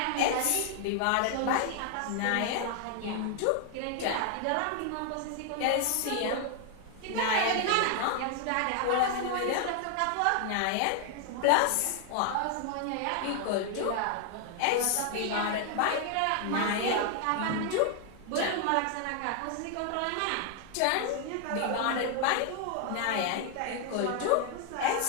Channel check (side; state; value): both; different; correlation 0.00